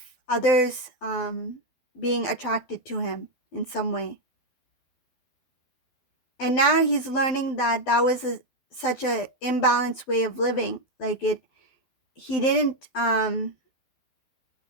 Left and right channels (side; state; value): right; late; 12 ms